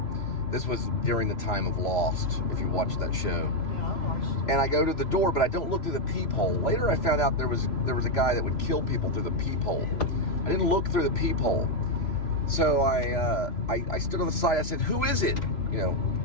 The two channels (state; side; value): late; right; 3.0 ms